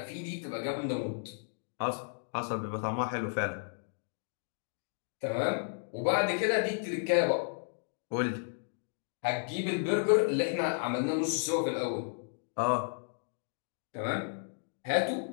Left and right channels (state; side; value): silent; right; digital silence